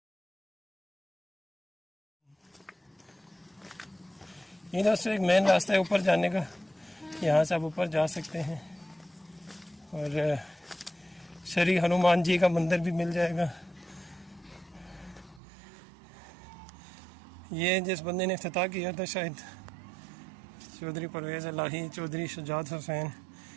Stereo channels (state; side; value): drops out; left; at 15.4 s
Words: ये दोस्तों एक मेन रास्ता है ऊपर जाने का, यहाँ से आप ऊपर जा सकते हैं और श्री हनुमान जी का मंदिर भी मिल जाएगा। ये जिस बंदे ने इफ्तिताह किया था शायद चौधरी परवेज़ इलाही चौधरी शुजात हुसैन,